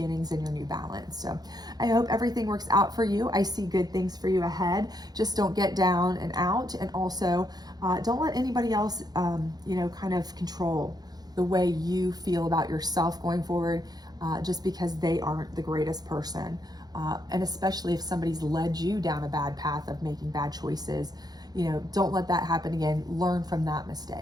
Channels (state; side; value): late; left; 0.19 ms